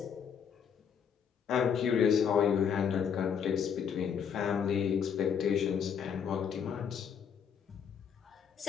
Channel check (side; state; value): right; quieter; 7.4 dB